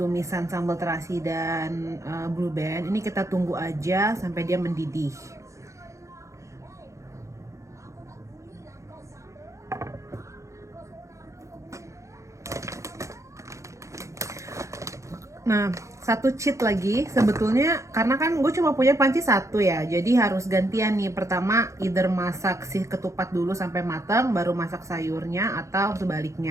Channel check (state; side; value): late; left; 0.15 ms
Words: sambal terasi dan blue band. Ini kita tunggu aja sampai dia mendidih. Nah, 1 cheat lagi sebetulnya, karena kan gue cuma punya panci 1 ya, jadi harus gantian nih. Pertama either masak si ketupat dulu sampai matang baru masak sayurnya, atau